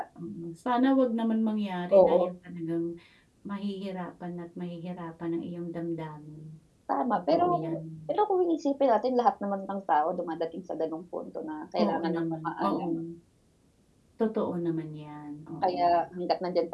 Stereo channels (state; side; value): identical; both; correlation 1.00